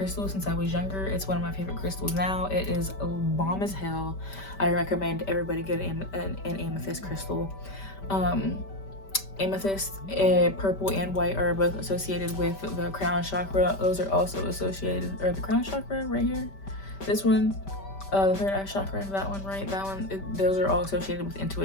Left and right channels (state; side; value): late; right; 5.1 ms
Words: since I was younger. It's one of my favorite crystals now. It is bomb as hell. I recommend everybody get an amethyst crystal. Amethyst, purple and white are both associated with the crown chakra. Those are also associated, or the crown chakra right here, this one, the third eye chakra, that one, right? That one, those are all associated with